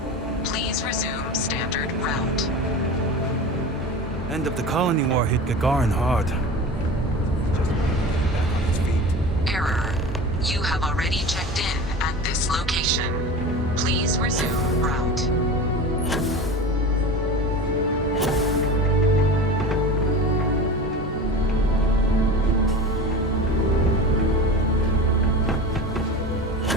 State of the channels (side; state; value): both; normal; correlation 0.32